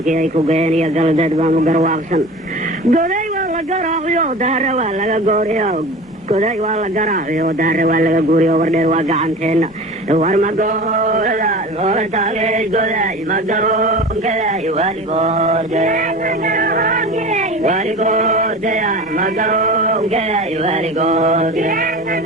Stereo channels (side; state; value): both; normal; correlation 0.35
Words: ايكو قين يا قلدت بانو قرواقسن قدي والله قراغيو دار والله قوريو قدي والله قراغيو دار والله قوريو وردي واقعانتين ورما قولا لولا تاقي قدي مقرون كدي والقود والقود يا مقرون كدي والقود